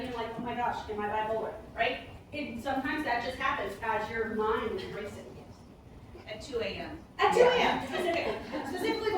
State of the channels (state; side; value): identical; both; correlation 1.00